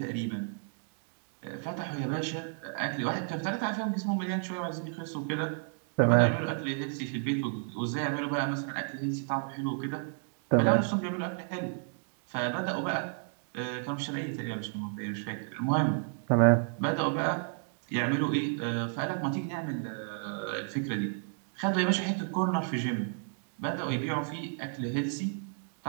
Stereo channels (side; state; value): left; silent; 57 dB below the other